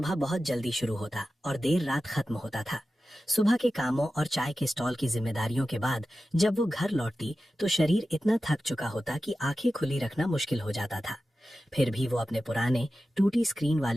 बहुत जल्दी शुरू होता और देर रात खत्म होता था। सुबह के कामों और चाय के स्टॉल की जिम्मेदारियों के बाद जब वो घर लौटती तो शरीर इतना थक चुका होता कि आंखें खुली रखना मुश्किल हो जाता था। फिर भी वो अपने पुराने टूटी स्क्रीन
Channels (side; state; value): both; normal; correlation 0.93